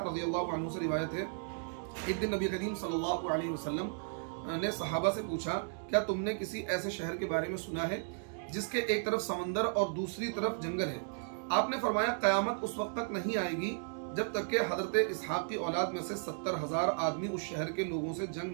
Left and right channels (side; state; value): left; silent; digital silence